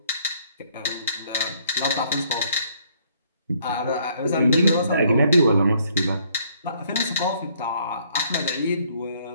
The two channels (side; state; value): both; inverted; correlation -0.65